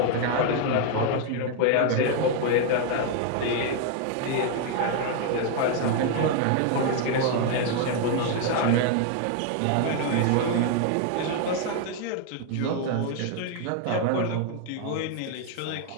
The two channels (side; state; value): both; different; correlation 0.00